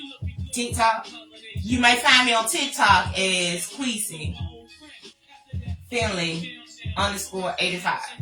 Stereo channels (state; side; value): identical; both; correlation 1.00